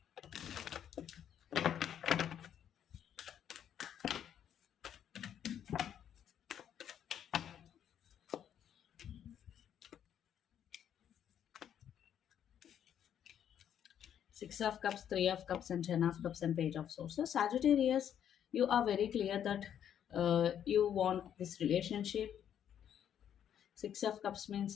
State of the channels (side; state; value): right; quieter; 9.5 dB